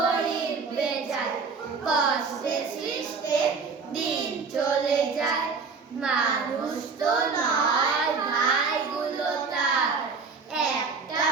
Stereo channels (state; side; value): quieter; left; 4.9 dB